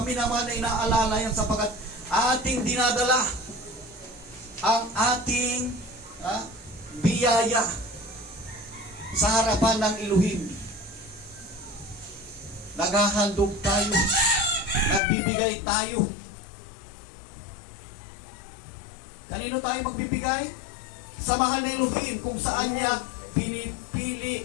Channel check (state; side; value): drops out; right; at 15.0 s